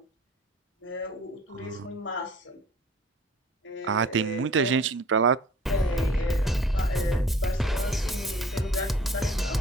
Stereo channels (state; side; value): normal; both; correlation 0.50